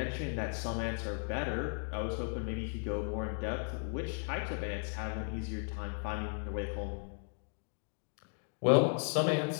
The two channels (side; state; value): right; silent; 54 dB below the other